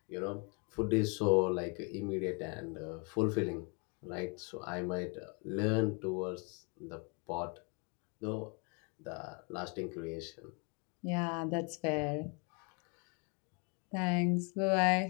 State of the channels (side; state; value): right; quieter; 34.8 dB